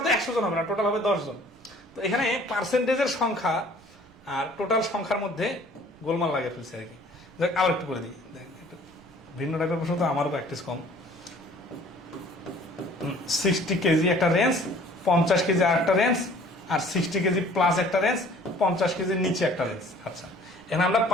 তো 100 জন হবে না, টোটাল হবে 10 জন। তো এখানে পার্সেন্টেজের সংখ্যা আর টোটাল সংখ্যার মধ্যে গোলমাল লাগে ফেলছে আর কি। আবার একটু করে দিই, দেখেন একটু ভিন্ন টাইপের প্রশ্ন, তো আমারও প্র্যাকটিস কম। 60 কেজি একটা রেঞ্জ, 50 কেজি আর একটা রেঞ্জ, আর 60 কেজি প্লাস একটা রেঞ্জ, 50 কেজির নিচে একটা রেঞ্জ। আচ্ছা, এখানে আমরা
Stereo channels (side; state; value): right; noise; rumble, 28 dB below the sound